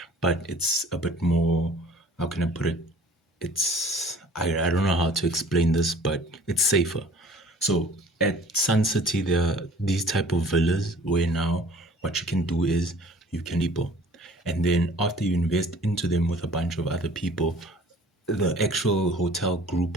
but it's a bit more. How can I put it? I don't know how to explain this, but it's safer. So at Sun City, there are these type of villas where now what you can do is you can people, and then after you invest into them with a bunch of other people, the actual hotel group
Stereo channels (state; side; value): normal; both; correlation 0.50